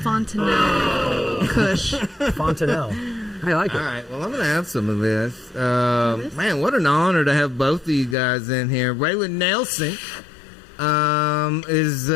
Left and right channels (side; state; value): right; drops out; at 8.2 s